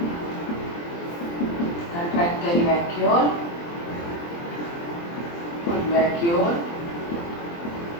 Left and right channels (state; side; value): late; right; 23 ms